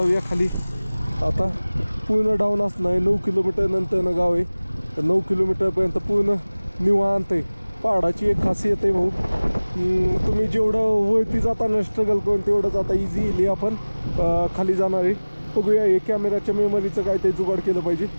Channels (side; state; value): both; inverted; correlation -1.00